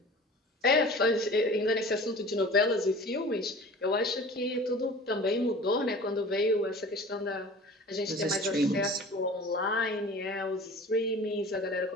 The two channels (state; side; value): normal; both; correlation 0.41